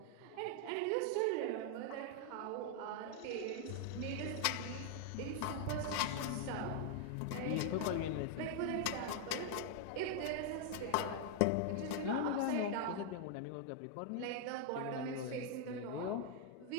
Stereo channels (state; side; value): different; both; correlation 0.00